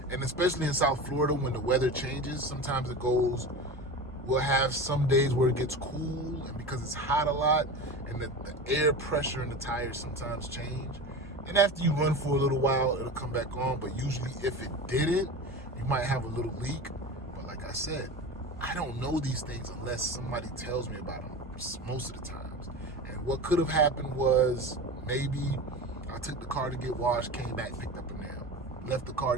and especially in South Florida when the weather changes, sometimes it goes, we'll have some days where it gets cool, and because it's hot a lot, and the air pressure in the tires sometimes change. And after you run for a little while, it'll come back on, but usually if it didn't, you might have a little leak. But like I said, I don't know these things unless somebody tells me about them most of the times. And what could have happened was maybe I took the car to get washed, came back, picked up a nail, left the car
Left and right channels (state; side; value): normal; both; correlation 0.29